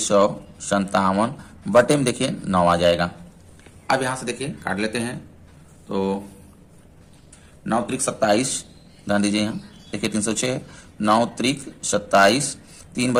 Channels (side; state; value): both; identical; correlation 1.00